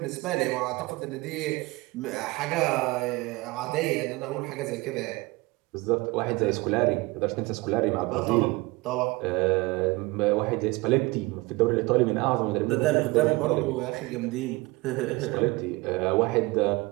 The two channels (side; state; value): left; quieter; 23.3 dB